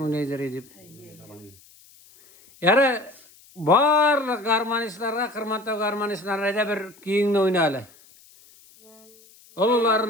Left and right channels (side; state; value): left; noise; hiss, 26 dB below the sound